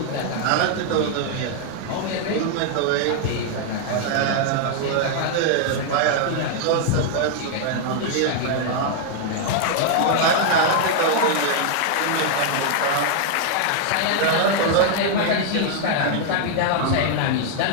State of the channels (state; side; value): different; both; correlation 0.00